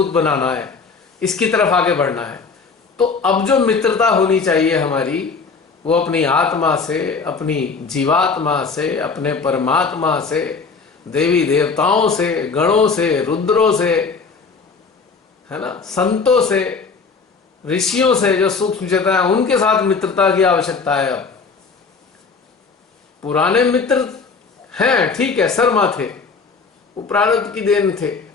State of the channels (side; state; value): right; quieter; 4.9 dB